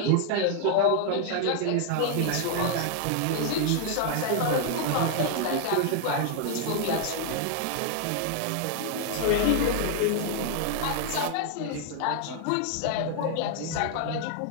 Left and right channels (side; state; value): both; different; correlation 0.00